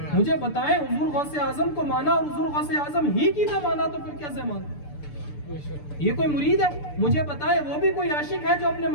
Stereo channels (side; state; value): right; late; 6.8 ms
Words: मुझे बताएं, हुजूर गौसे आजम को माना और हुजूर गौसे आजम ही की ना माना तो फिर कैसे माना? ये कोई मुरीद है? मुझे बताएं, वो भी कोई आशिक है जो अपने